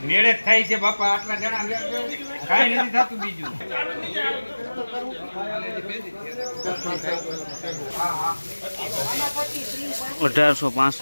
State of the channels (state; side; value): inverted; both; correlation -1.00